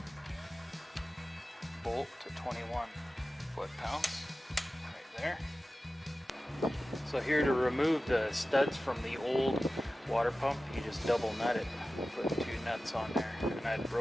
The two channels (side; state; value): both; normal; correlation 0.95